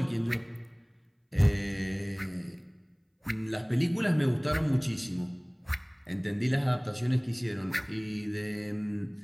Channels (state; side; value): identical; both; correlation 1.00